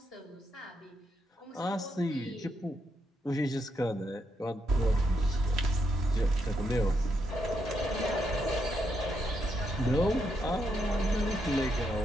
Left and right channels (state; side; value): normal; both; correlation 0.80